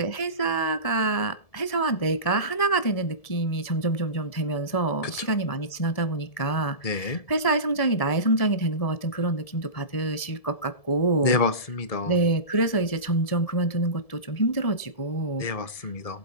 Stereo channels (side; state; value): right; late; 1.7 ms